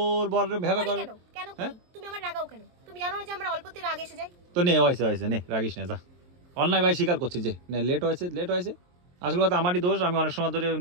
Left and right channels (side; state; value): left; late; 23 ms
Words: বর ভ্যাবা করে। কেন তুমি আমার রাগাও কেন? তুমি জানো যে আমরা অল্পতে রাগ এসে যাই। তো নে হয়েছে নে রাগিস না, যা। অন্যায় ভাই স্বীকার করছি যে নে লেট হয়েছে। আসল কথা আমারই দোষ, আমি অনেক সময় ধরে